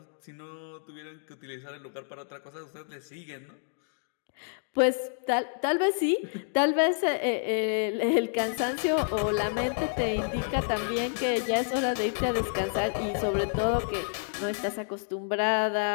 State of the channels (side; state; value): right; silent; digital silence